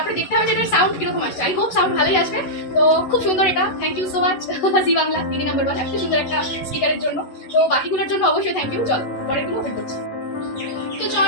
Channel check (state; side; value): late; right; 11 ms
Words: দেখতে হবে যে এটার সাউন্ড কিরকম আসছে। আই হোপ সাউন্ড ভালোই আসবে। তো খুব সুন্দর এটা, থ্যাংক ইউ সো মাচ জি বাংলা দিদি নাম্বার 1 এত সুন্দর একটা স্পিকারের জন্য। তো বাকিগুলোর জন্য অবশ্যই থ্যাংক ইউ। চলো পরেরগুলো ওপেন করছি। তো